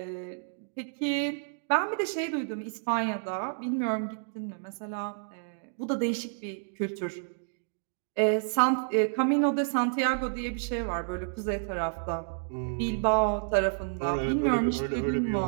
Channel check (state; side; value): silent; left; digital silence